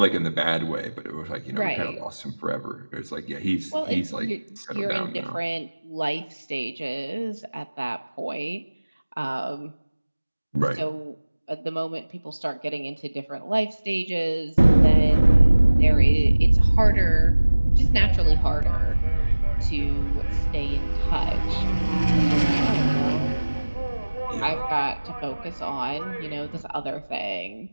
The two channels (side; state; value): both; inverted; correlation -1.00